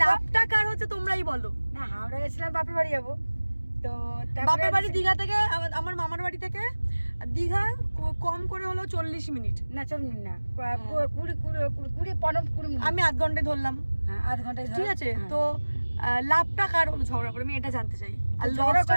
লাভটা কার হচ্ছে তোমরাই বলো। না হাওড়া গেছিলাম বাপের বাড়ি যাবো, তো বাপের বাড়ি দীঘা থেকে আমার মামার বাড়ি থেকে দীঘা কম করে হলো 40 মিনিট, না 40 মিনিট না, 20 মিনিট, আমি আধ ঘন্টায় ধরলাম। হ্যাঁ আধ ঘন্টায় ঠিক আছে। তো লাভটা কার হলো ঝগড়া করে, আমি এটা জানতে চাই। আর ঝগড়া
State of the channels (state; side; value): inverted; both; correlation -1.00